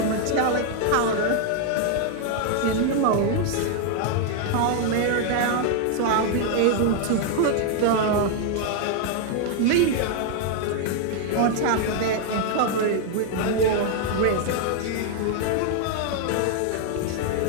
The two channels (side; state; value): both; different; correlation 0.00